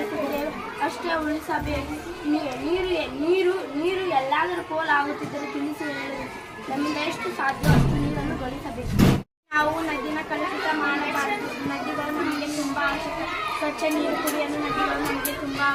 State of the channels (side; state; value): both; identical; correlation 1.00